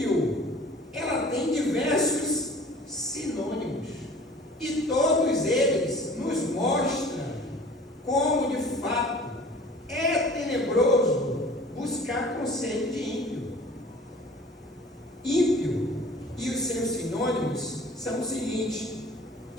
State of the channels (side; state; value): both; normal; correlation 0.47